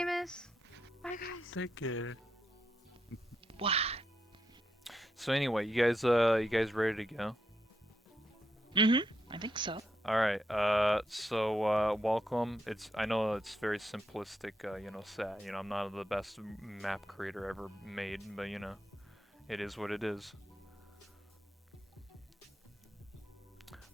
Bye, guys. Take care. What? So anyway, you guys ready to go? Mm-hmm. I think so. All right. Welcome. I know it's very simplistic. Set. I'm not the best map creator ever made, but it is what it is.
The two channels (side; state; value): both; normal; correlation 0.82